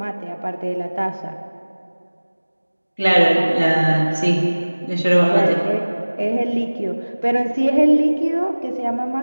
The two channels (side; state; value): both; inverted; correlation -1.00